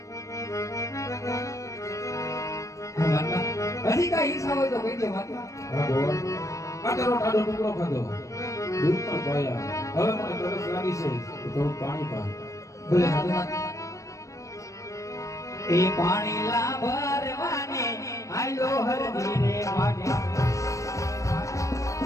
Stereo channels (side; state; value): right; late; 0.15 ms